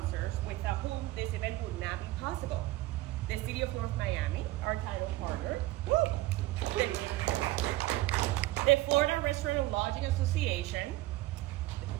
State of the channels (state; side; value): quieter; left; 17.7 dB